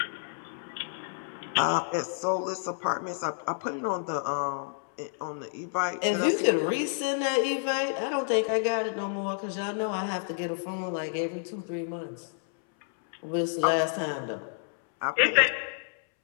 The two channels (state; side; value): silent; right; 58 dB below the other